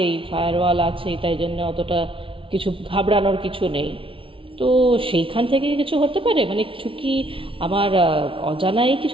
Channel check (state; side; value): late; left; 0.25 ms